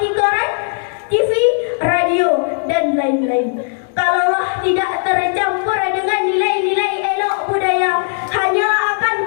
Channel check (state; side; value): silent; right; digital silence